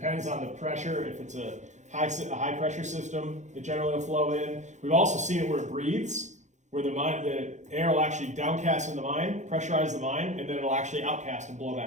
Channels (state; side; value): late; left; 0.34 ms